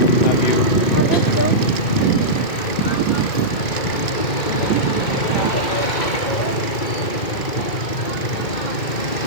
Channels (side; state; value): right; late; 2.2 ms